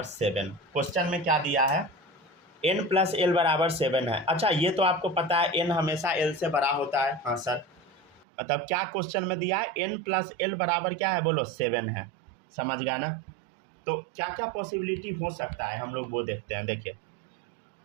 7। क्वेश्चन में क्या दिया है, n+l बराबर 7 है। अच्छा ये तो आपको पता है n हमेशा l से बड़ा होता है। हाँ सर, मतलब क्या क्वेश्चन में दिया है, n+l बराबर क्या है बोलो 7 है, समझ गए ना। तो क्या क्या पॉसिबिलिटी हो सकता है हम लोग वो देखते हैं। देखिए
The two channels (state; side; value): drops out; left; at 8.2 s